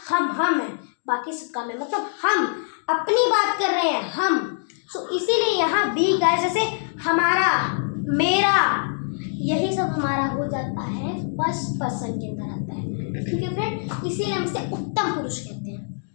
हम है बाकी सब कम है, मतलब हम अपनी बात कर रहे हैं हम। सो इसीलिए यहाँ वी गाइस, जैसे हमारा, मेरा, यही सब हमारा हो जाता है फर्स्ट पर्सन के अंदर आता है। ठीक है फ्रेंड, इसीलिए हम इसे उत्तम पुरुष कहते हैं।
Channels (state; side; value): silent; right; digital silence